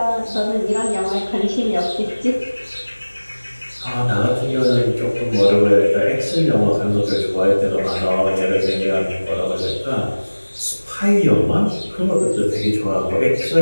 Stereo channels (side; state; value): both; inverted; correlation -1.00